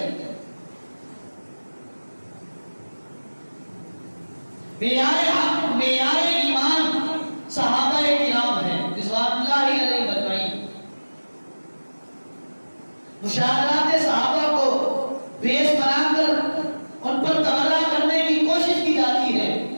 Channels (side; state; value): both; inverted; correlation -1.00